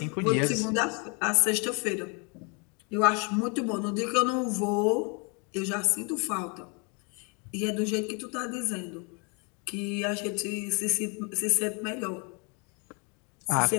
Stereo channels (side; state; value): right; quieter; 34.3 dB